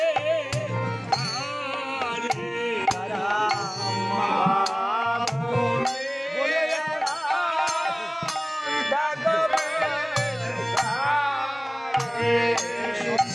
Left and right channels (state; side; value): identical; both; correlation 1.00